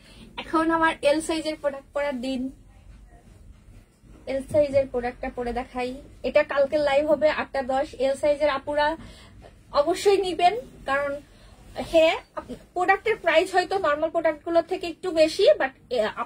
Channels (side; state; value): both; identical; correlation 1.00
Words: এখন আমার এল সাইজের প্রোডাক্ট পরার দিন। এল সাইজের প্রোডাক্টটা পরে দেখাই। এটা কালকে লাইভ হবে 8:10। এল সাইজের আপুরা অবশ্যই নিবেন, কারণ হ্যাঁ প্রোডাক্টের প্রাইস হয়তো নর্মাল প্রোডাক্ট গুলোর থেকে একটু বেশি, বাট